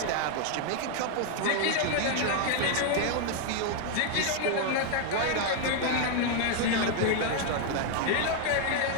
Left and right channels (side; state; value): both; different; correlation 0.00